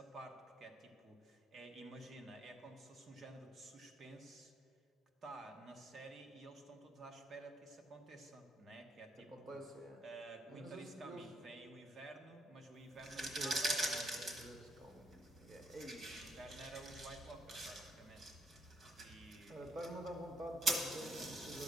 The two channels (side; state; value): both; normal; correlation 0.72